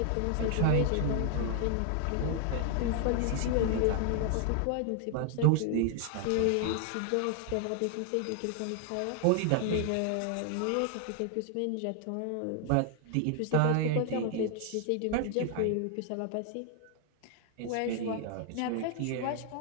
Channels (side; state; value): both; different; correlation 0.00